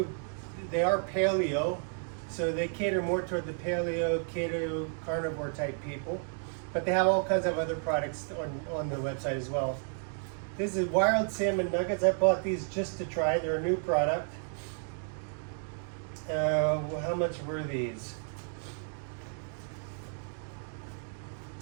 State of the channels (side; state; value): left; silent; 56 dB below the other